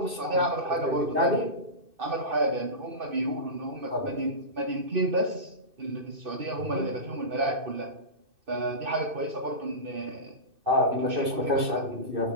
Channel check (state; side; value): late; left; 2.6 ms